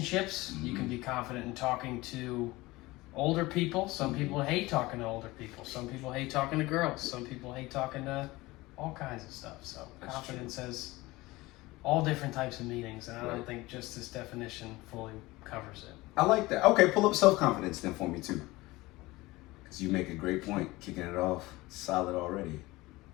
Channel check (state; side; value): quieter; right; 20.4 dB